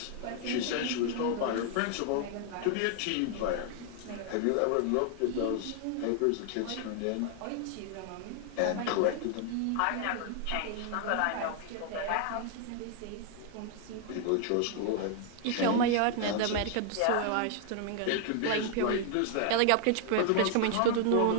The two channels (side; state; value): both; different; correlation 0.00